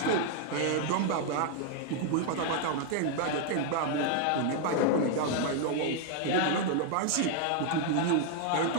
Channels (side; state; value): both; different; correlation 0.00